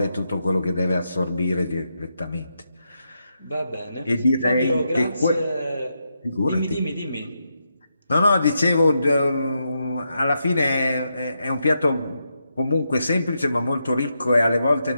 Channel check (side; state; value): both; inverted; correlation -0.84